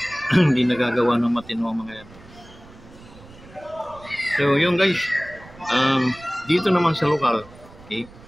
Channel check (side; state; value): right; noise; rumble, 21 dB below the sound